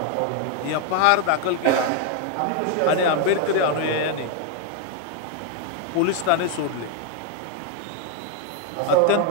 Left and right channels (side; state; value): both; different; correlation 0.01